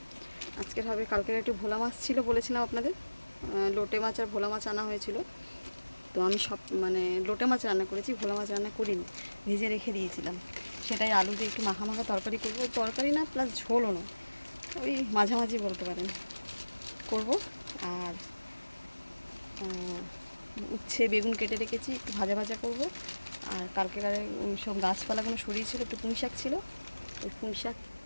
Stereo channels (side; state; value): both; inverted; correlation -1.00